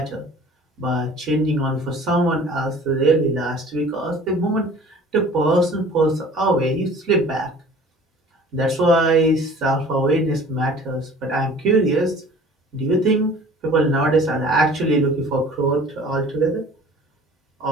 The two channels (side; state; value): both; normal; correlation 0.47